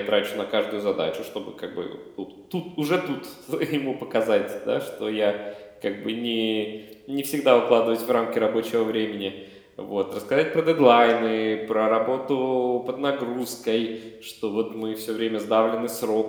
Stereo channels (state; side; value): identical; both; correlation 1.00